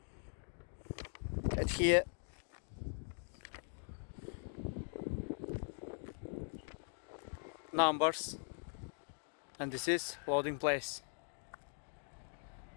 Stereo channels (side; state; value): right; silent; 50 dB below the other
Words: at here numbers, and this is loading place.